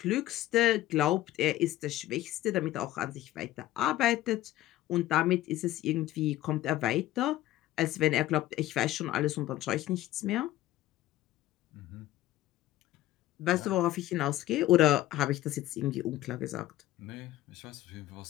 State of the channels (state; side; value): quieter; right; 15.0 dB